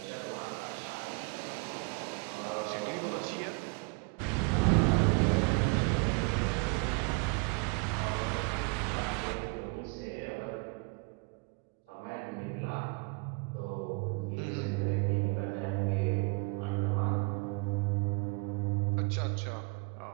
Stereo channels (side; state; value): left; quieter; 32.5 dB